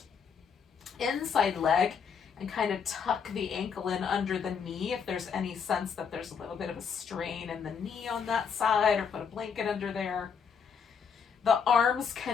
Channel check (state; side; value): quieter; right; 6.6 dB